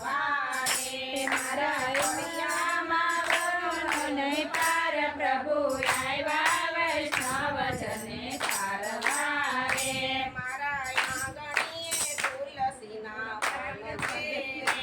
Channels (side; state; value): both; identical; correlation 1.00